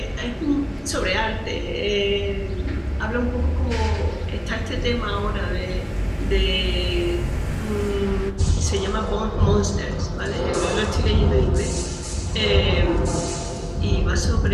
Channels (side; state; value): both; identical; correlation 1.00